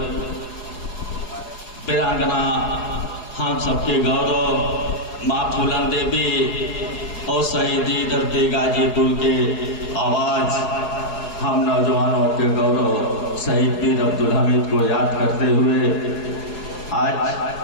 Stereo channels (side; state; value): right; late; 4.8 ms